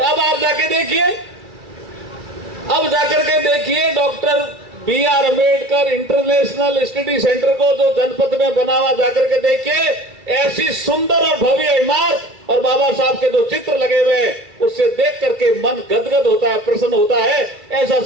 अब आप जाके देखिए, अब जाकर के देखिए doctor B R. Ambedkar international study centre को जो जनपद में बना हुआ, जाकर के देखिए, ऐसी सुंदर और भव्य इमारत और बाबा साहब के जो चित्र लगे हुए हैं, उससे देख करके मन गदगद होता है, प्रसन्न होता है। ऐसा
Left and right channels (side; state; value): left; late; 2.3 ms